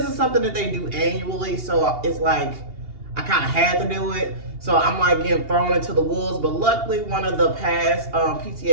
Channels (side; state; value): left; late; 2.8 ms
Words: is something that they do annually. So it's like I kind of had to do it. So I'm like getting thrown into the wolves. But luckily, one of the past